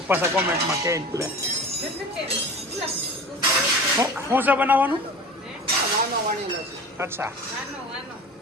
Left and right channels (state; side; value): normal; both; correlation 0.35